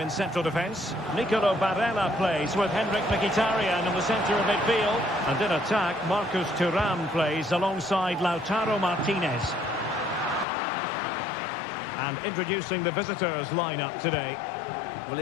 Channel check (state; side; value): drops out; right; at 10.5 s